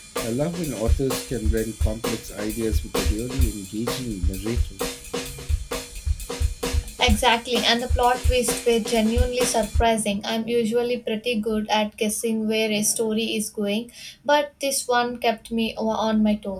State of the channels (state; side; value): identical; both; correlation 1.00